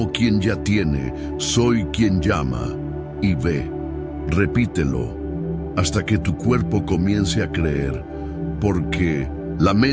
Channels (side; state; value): both; identical; correlation 1.00